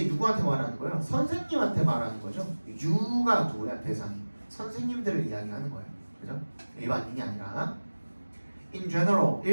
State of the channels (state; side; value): inverted; both; correlation -1.00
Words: 누구한테 말하는 거예요? 선생님한테 말하는 거죠. you가 누구야? 대상이. 선생님들을 이야기하는 거예요. 그죠? 일반인이 아니라. In general,